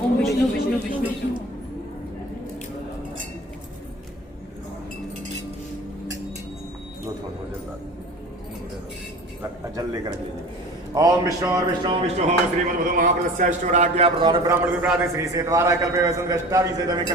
ओम विष्णु विष्णु विष्णु विष्णु। जल लेकर लीजिए। ओम विष्णु विष्णु विष्णु हो श्रीमद् महाप्रदस्याष्टोराज्ञा प्रधान ब्राह्मण विप्राद श्री से द्वारा कल्पे वसंतष्टावी से तमे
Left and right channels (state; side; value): normal; both; correlation 0.39